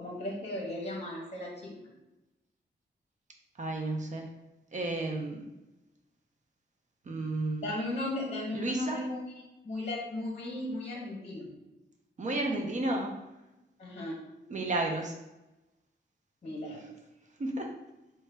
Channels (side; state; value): both; normal; correlation 0.53